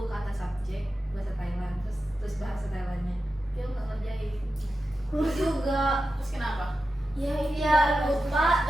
kata subjek bahasa Thailand, terus bahasa Thailandnya. Dia nggak ngerjain. Juga. Terus kenapa? Ya lupa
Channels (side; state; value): both; normal; correlation 0.91